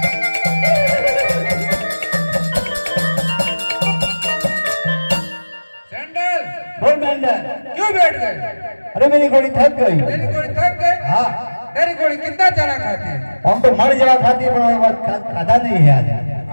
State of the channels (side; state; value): both; inverted; correlation -1.00